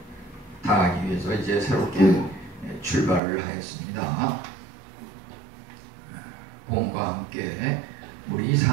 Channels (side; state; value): left; drops out; at 3.2 s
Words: 다하기 위해서 이제 새롭게 출발을 하였습니다. 봄과 함께 우리